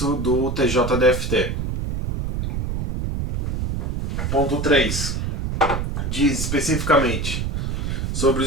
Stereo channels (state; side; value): noise; right; rumble, 2 dB below the sound